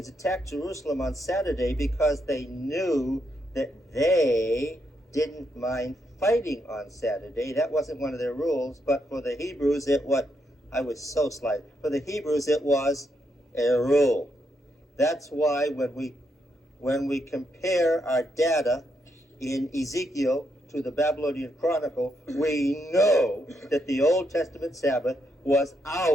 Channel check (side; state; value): both; normal; correlation 0.79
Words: attacked Jerusalem on Saturday because they knew that they didn't mind fighting on Saturday. That wasn't one of their rules, but for the Hebrews I was so slight. For the Hebrews it was a rule. That's why when we compare our data in Ezekiel to the Babylonian Chronicle, we know that the Old Testament Sabbath was